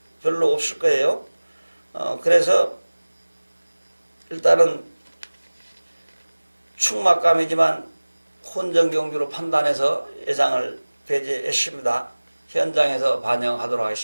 별로 없을 거예요. 그래서 일단은 충막감이지만 혼전 경주로 판단해서 예상을 배제했습니다. 현장에서 반영하도록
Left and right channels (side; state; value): both; inverted; correlation -1.00